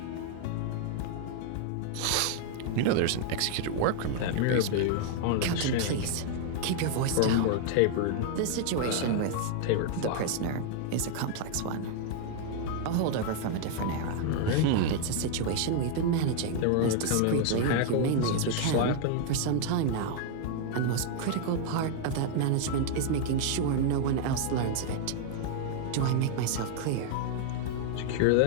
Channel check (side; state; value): both; different; correlation 0.00